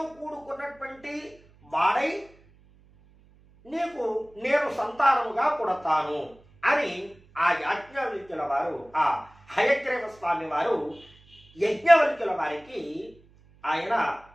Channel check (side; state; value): right; noise; hum, 28 dB below the sound